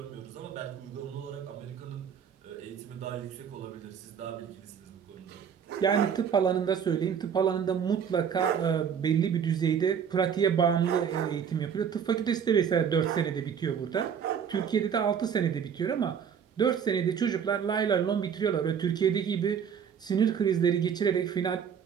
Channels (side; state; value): left; quieter; 7.6 dB